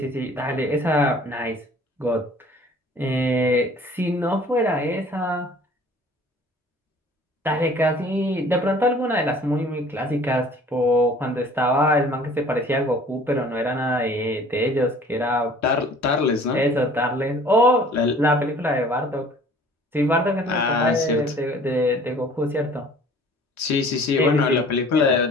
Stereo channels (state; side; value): normal; both; correlation 0.50